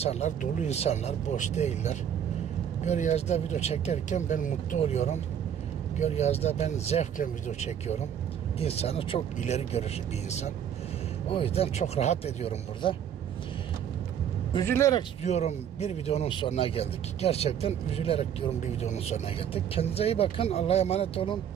dolu insanlar, boş değiller. Gölyazı'da video çekerken ben mutlu oluyorum. Gölyazı'da ben zevkle video çekiyorum. İnsanı çok ileri görüşlü bir insan. O yüzden çok rahat ediyorum burada. Üzülerek diyorum bir videonun sonuna geldik. Gerçekten üzülerek diyorum bir videonun sonuna geldik. Kendinize iyi bakın. Allah'a emanet olun.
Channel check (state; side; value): quieter; left; 9.1 dB